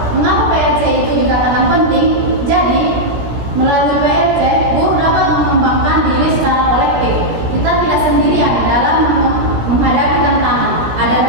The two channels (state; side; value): late; left; 17 ms